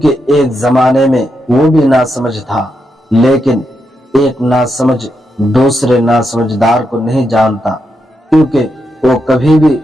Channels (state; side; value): normal; both; correlation 0.83